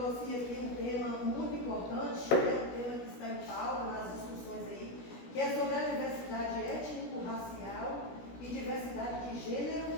aqui um tema muito importante, um tema que está em pauta nas discussões aí, que é sobre a diversidade étnico-racial e diversidade de gênero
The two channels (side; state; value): right; late; 16 ms